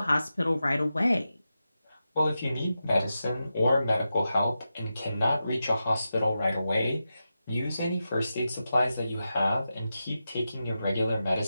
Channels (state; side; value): inverted; both; correlation -0.90